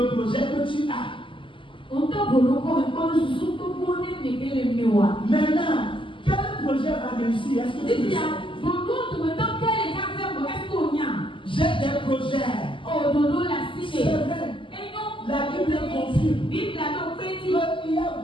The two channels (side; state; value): right; late; 0.25 ms